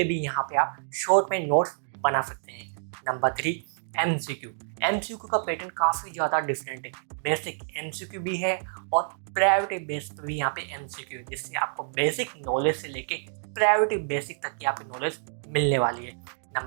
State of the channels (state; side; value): silent; left; digital silence